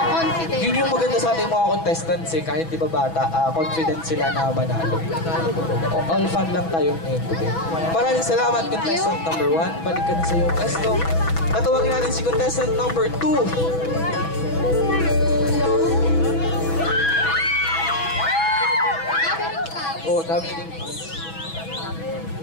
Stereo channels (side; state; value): right; late; 6.1 ms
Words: Yun yung maganda sa ating mga contestants eh, kahit di ba bata, confident sila na manalo. All fun lang tayo ngayon today. Maraming salamat contestant number 1. Balik ka na sa iyong pwesto. Tatawagin natin si contestant number 2. Oh, dami din.